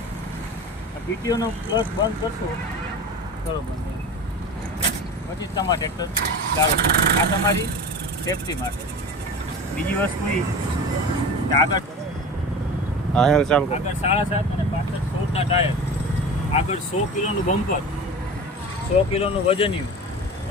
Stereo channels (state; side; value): normal; both; correlation 0.33